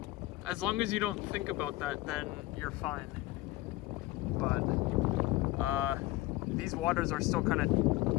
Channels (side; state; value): right; quieter; 18.2 dB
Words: As long as you don't think about that, then you're fine. But these waters are still kind of